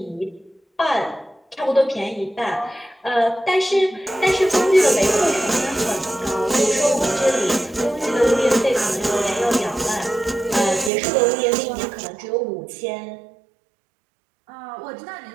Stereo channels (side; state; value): left; drops out; at 10.9 s